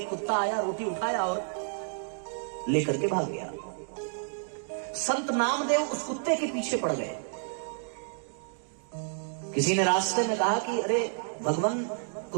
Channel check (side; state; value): left; silent; digital silence